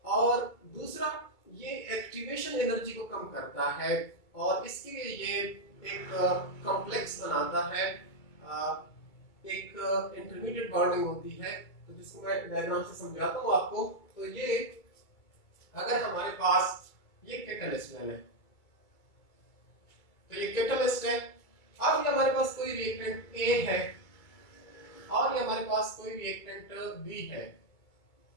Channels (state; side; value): late; right; 2.3 ms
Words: और दूसरा, ये एक्टिवेशन एनर्जी को कम करता है, और इसके लिए ये एक कॉम्प्लेक्स बनाता है, एक इंटरमीडिएट बॉन्डिंग होती है। तो जिसको मैं डायग्राम से समझाता हूँ आपको। तो ये अगर हमारे पास ये कैटलिस्ट है, तो ये कैटलिस्ट है। अब ये हमारे पास कोई रिएक्टेंट A है और ये हमारे पास कोई रिएक्टेंट B है।